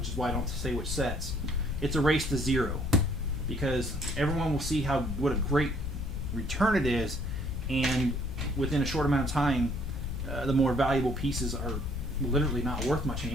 is why I don't say which sets, it's a race to zero, because everyone will see what a great return it is, and within a short amount of time, the more valuable pieces are literally not worth much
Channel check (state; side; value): noise; left; rumble, 3 dB below the sound